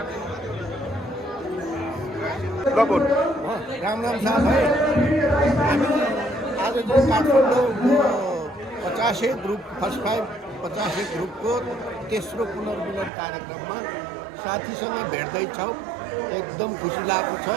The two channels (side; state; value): left; drops out; at 13.1 s